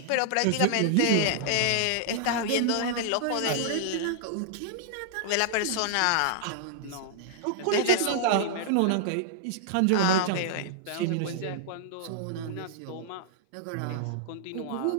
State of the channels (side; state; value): both; different; correlation -0.01